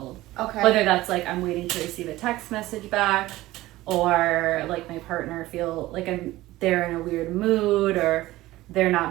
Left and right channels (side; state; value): left; quieter; 17.3 dB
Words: Okay. Whether that's like I'm waiting to receive a text message back, or like my partner feel like they're in a weird mood, or they're not